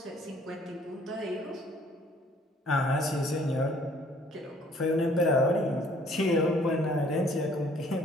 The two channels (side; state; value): both; normal; correlation 0.59